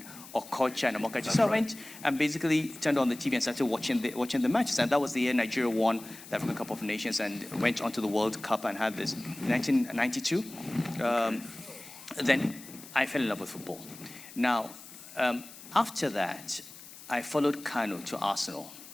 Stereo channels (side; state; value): left; noise; hiss, 17 dB below the sound